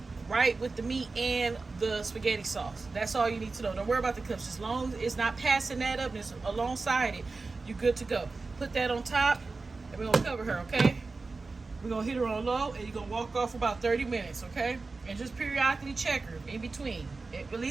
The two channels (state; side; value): quieter; left; 3.9 dB